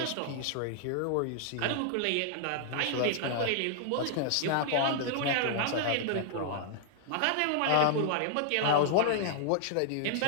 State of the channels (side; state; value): both; different; correlation -0.01